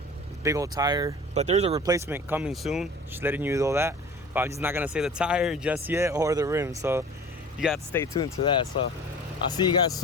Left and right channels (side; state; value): both; normal; correlation 0.41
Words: big old tire. But there's a replacement coming soon, just letting you know that. But I'm just not gonna say the tire just yet, or the rim, so you got to stay tuned to that. So I'll see you guys